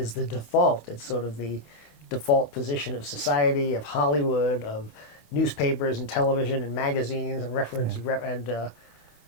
the default. It's sort of the default position of society, of Hollywood, of newspapers and television and magazines and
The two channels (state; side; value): late; right; 26 ms